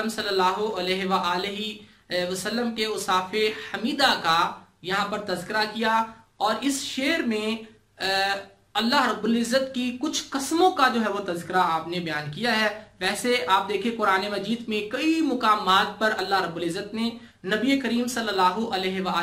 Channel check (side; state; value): both; identical; correlation 1.00